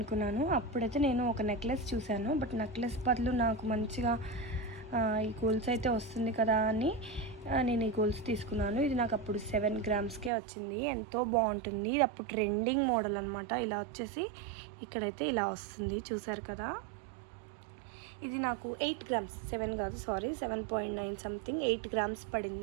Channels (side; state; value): left; drops out; at 10.3 s